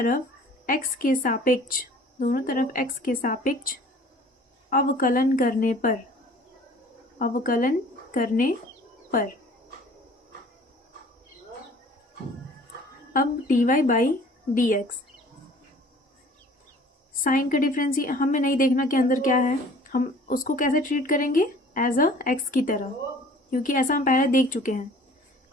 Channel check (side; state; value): both; normal; correlation 0.50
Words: x के सापेक्ष अवकलन करने पर अब dy by d x, sine का डिफरेंस हमें नहीं देखना कि अंदर क्या है, हम उसको कैसे ट्रीट करेंगे एज अ एक्स की तरह, क्योंकि ऐसा हम पहले देख चुके हैं।